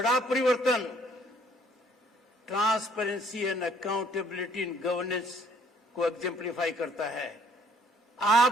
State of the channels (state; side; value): normal; both; correlation 0.62